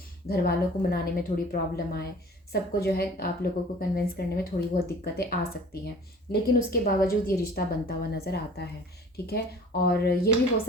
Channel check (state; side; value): normal; both; correlation 0.46